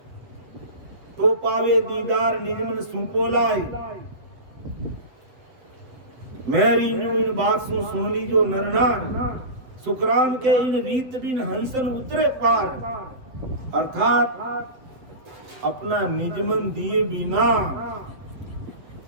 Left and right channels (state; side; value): late; left; 7.5 ms